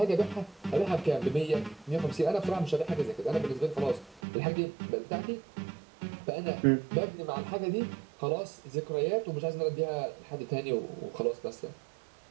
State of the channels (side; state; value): left; drops out; at 4.2 s